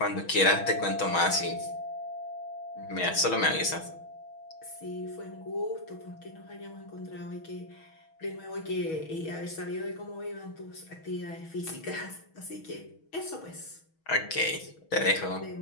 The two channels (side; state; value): right; late; 6.2 ms